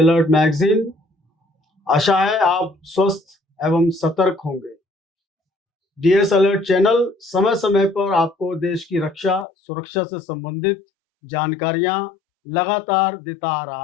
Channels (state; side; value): drops out; right; at 9.5 s